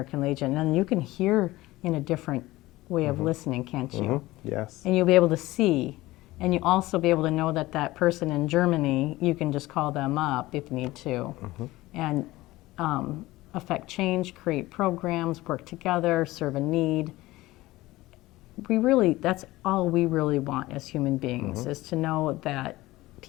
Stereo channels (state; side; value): quieter; right; 18.4 dB